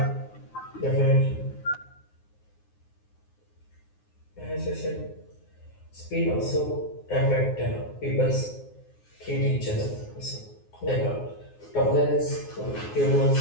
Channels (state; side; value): late; right; 9.6 ms